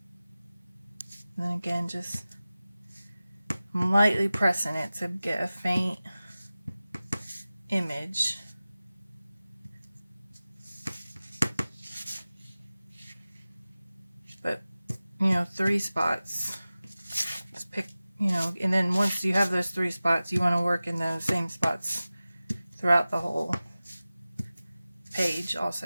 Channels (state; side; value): inverted; both; correlation -0.96